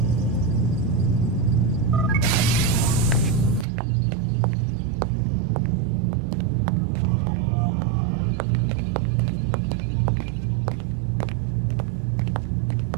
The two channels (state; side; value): drops out; left; at 3.7 s